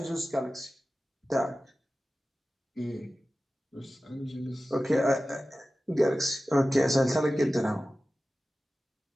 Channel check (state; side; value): normal; both; correlation 0.95